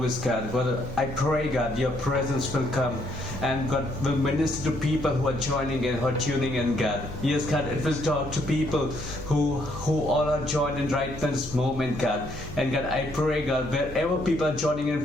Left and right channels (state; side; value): normal; both; correlation 0.70